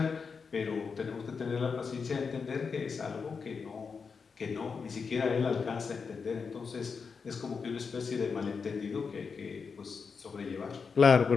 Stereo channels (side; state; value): right; quieter; 5.4 dB